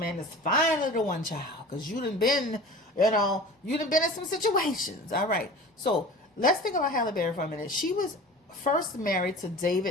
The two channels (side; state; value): both; normal; correlation 0.39